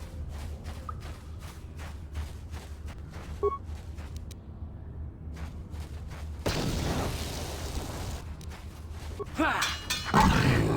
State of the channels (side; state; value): both; identical; correlation 1.00